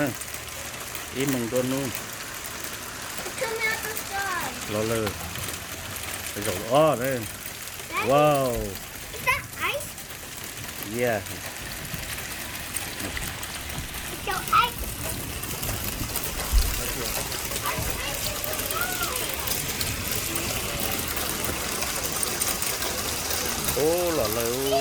im mong đua nu Come out the sky. lò lời cái dầu đây Daddy, wow is that ice? yeah So ice. ô lò lời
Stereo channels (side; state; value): both; identical; correlation 1.00